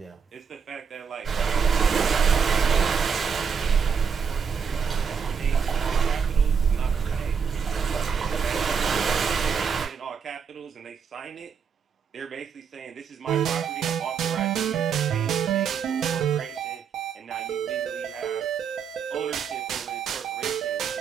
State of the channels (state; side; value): quieter; left; 6.6 dB